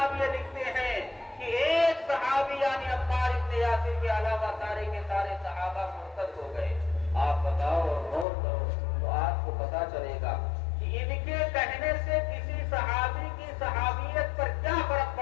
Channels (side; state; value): right; drops out; at 8.2 s